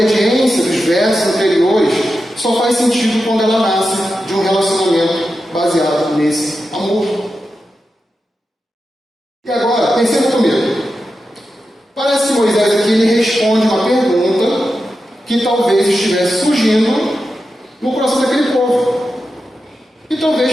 dos versos anteriores só faz sentido quando ela nasce de um relacionamento baseado nesse amor. E agora, pensando comigo. Parece que Moisés aqui ele responde uma pergunta que talvez estivesse surgindo no coração daquele povo. E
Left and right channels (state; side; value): normal; both; correlation 0.90